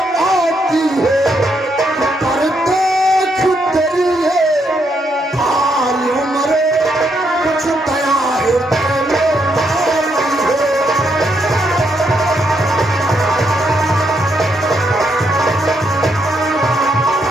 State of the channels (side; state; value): both; normal; correlation 0.77